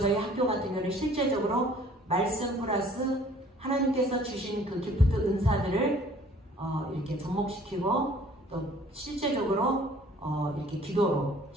학교 같은 경우는 실제적으로 말씀 플러스 하나님께서 주신 그 기프트 은사들을 이렇게 접목시키고 또 실제적으로 이렇게 기도로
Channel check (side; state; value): both; normal; correlation 0.54